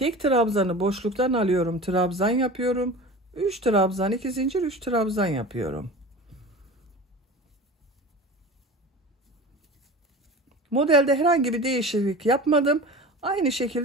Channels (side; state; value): both; normal; correlation 0.35